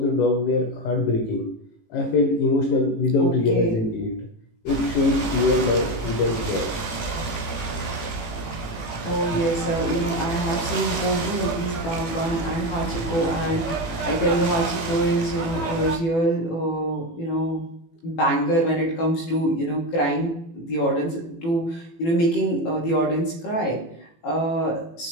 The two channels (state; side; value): late; right; 18 ms